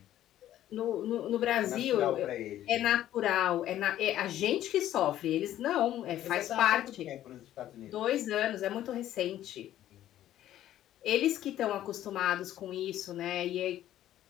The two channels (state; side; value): quieter; right; 12.6 dB